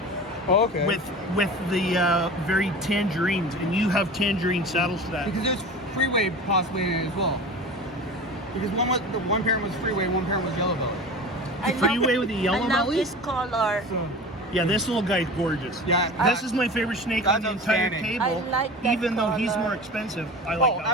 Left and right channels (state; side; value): normal; both; correlation 0.34